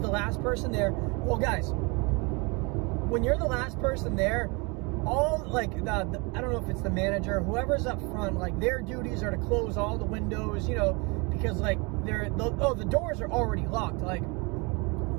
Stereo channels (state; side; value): quieter; left; 29.2 dB